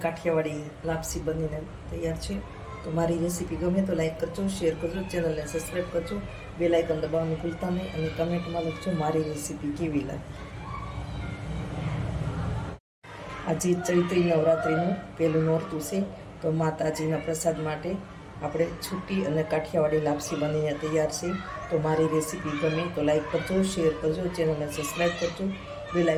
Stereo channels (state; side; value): identical; both; correlation 1.00